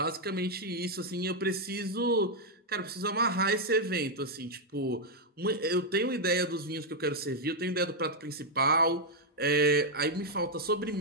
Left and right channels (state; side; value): normal; both; correlation -0.01